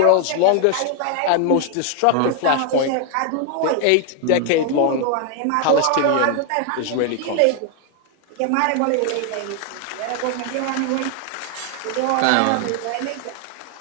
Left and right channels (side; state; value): both; different; correlation 0.00